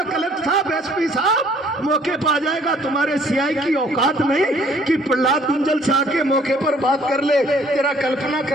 कलेक्टर साहब, एसपी साहब मौके पर आ जाएगा। तुम्हारे सीआई की औकात नहीं कि प्रहलाद गुंजल से आके मौके पर बात कर ले। तेरा कल्पना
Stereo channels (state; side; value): normal; both; correlation 0.60